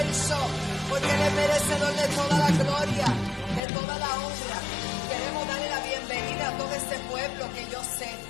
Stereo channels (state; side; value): drops out; right; at 3.6 s